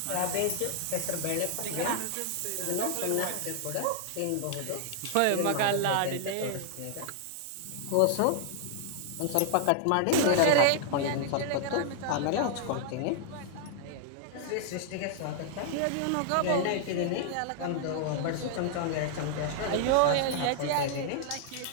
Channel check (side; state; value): both; different; correlation 0.00